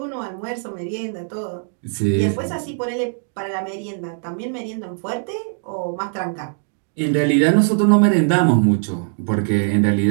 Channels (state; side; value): silent; left; digital silence